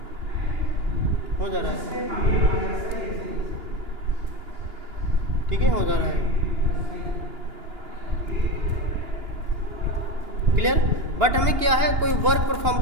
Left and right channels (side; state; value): left; late; 2.9 ms